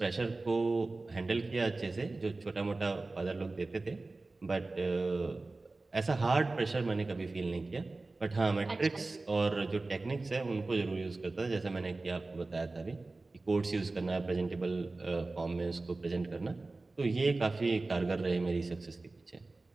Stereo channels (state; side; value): quieter; left; 3.3 dB